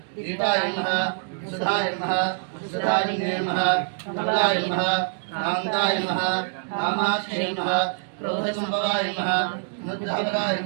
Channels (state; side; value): silent; left; digital silence